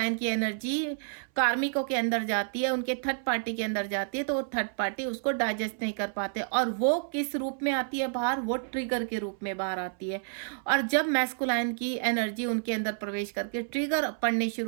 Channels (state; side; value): silent; left; 58 dB below the other